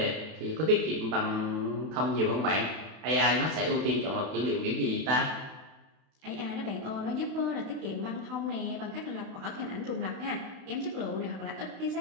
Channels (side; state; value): left; late; 32 ms